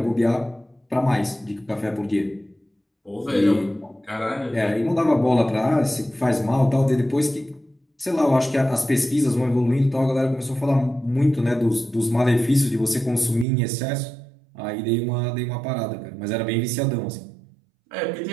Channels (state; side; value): drops out; left; at 13.5 s